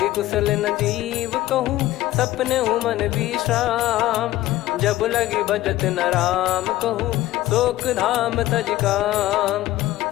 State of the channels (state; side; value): quieter; right; 15.8 dB